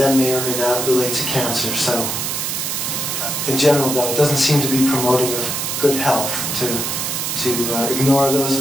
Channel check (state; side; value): noise; right; hiss, 2 dB below the sound